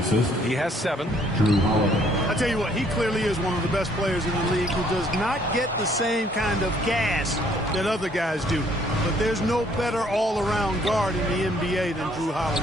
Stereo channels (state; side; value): normal; both; correlation 0.64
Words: He has 7. Drew Holiday. I tell you what, he clearly is one of the best players in the league who does not get the same kind of gas that other guys do. But there's no better all-around guard in the NBA than Drew